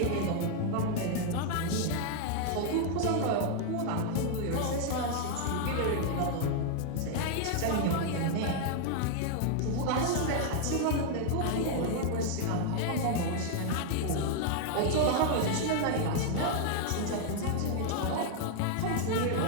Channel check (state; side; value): different; both; correlation 0.00